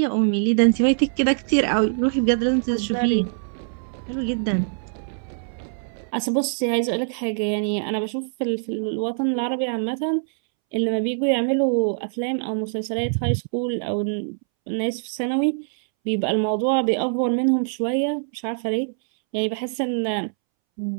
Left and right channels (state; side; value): silent; left; 63 dB below the other